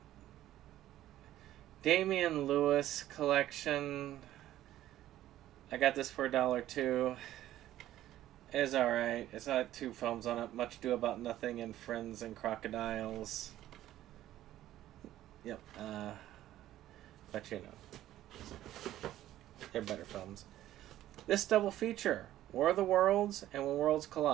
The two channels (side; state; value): left; quieter; 13.5 dB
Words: Damian Lewis collection, I got this for $1 too. It's alright. It's got 2 films on it. Much Ado About Nothing and Friends and Crocodiles. Yep. But you know, they're better films. This double feature, War of the Worlds and When Worlds